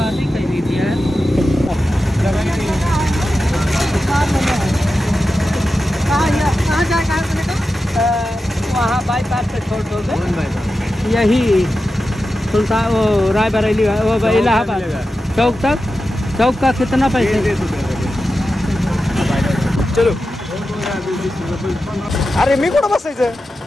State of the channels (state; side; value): normal; both; correlation 0.91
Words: वहाँ बाईपास पे छोड़ दोगे यही सुल्तान वो रायबरेली वो इलाहाबाद चौक का कितना पैसे. चलो. अरे मी कुठं बसायचं.